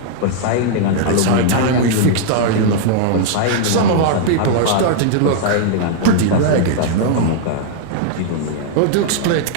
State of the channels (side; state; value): both; different; correlation -0.01